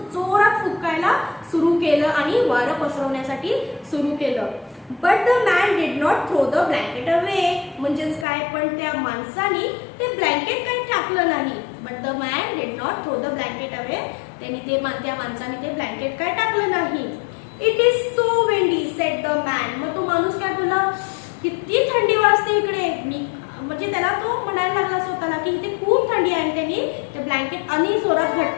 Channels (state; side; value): drops out; right; at 8.2 s